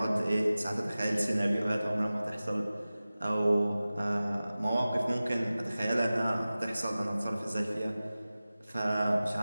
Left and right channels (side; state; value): both; inverted; correlation -0.97